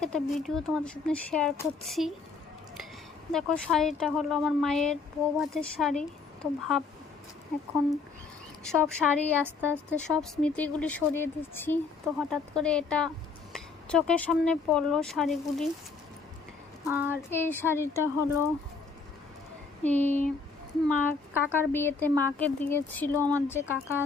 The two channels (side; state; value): right; quieter; 4.6 dB